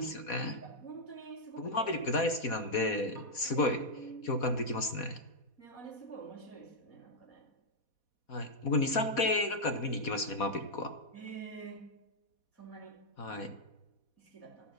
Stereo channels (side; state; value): right; late; 4.2 ms